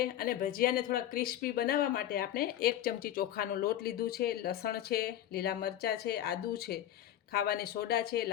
અને ભજીયાને થોડા ક્રિસ્પી બનાવવા માટે આપણે 1 ચમચી ચોખાનો લોટ લીધું છે, લસણ છે, લીલા મરચાં છે, આદું છે, ખાવાની સોડા છે,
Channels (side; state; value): right; quieter; 11.9 dB